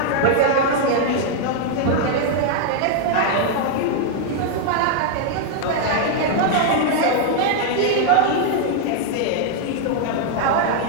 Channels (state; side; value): different; both; correlation 0.00